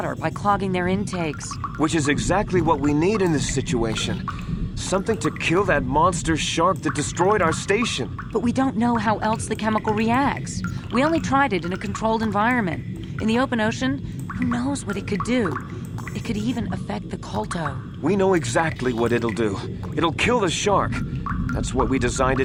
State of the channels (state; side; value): identical; both; correlation 1.00